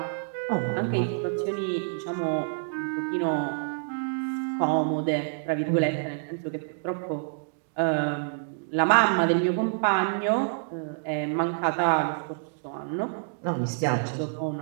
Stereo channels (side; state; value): left; silent; digital silence